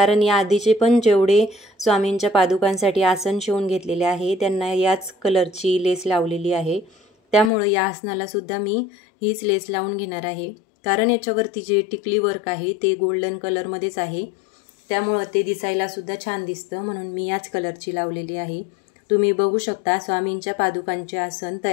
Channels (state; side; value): drops out; right; at 7.5 s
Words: या आधीचे पण जेवढे स्वामींच्या पादुकांसाठी आसन शिवून घेतलेले आहे त्यांना याच कलरची लेस लावलेली आहे. त्यामुळे या आसनाला सुद्धा मी हीच लेस लावून घेणार आहे. कारण याच्यावरती जे टिकली वर्क आहे ते गोल्डन कलरमध्येच आहे, त्यामुळं ते दिसायला सुद्धा छान दिसतं, म्हणून मी याच कलरची लावलेली आहे. तुम्ही बघू शकता स्वामींच्या पादुकांचे आसन